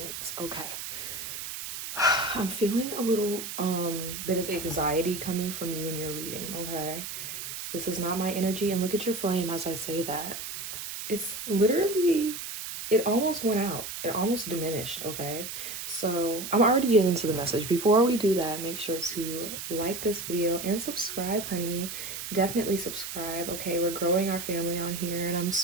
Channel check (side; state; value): right; noise; hiss, 7 dB below the sound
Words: Okay. I'm feeling a little bit of anxiety coming from you in your reading, okay? This is not my energy, and look at your flame as I say that. It's literally, it almost went out. It almost diminished, okay? So I'm already getting into the message. Before we do that, make sure to like this video and subscribe, honey. Definitely subscribe, okay? We're growing our family on here, and I'm